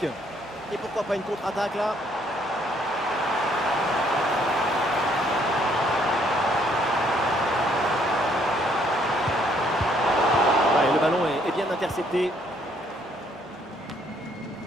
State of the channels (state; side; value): normal; both; correlation 0.67